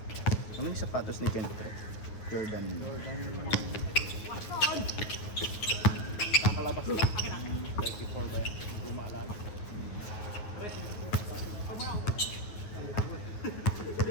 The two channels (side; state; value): right; late; 9.5 ms